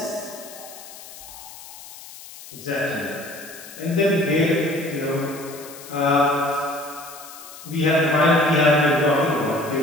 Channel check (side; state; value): left; noise; hiss, 16 dB below the sound